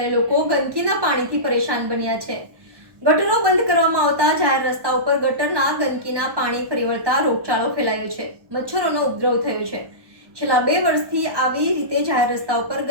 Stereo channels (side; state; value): left; late; 1.1 ms